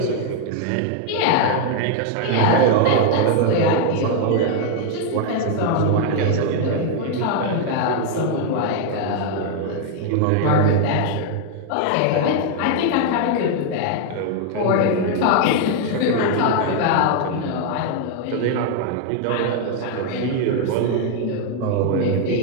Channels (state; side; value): different; both; correlation 0.00